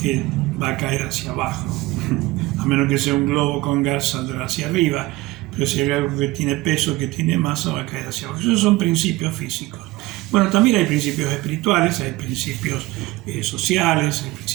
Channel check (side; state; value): left; quieter; 20.0 dB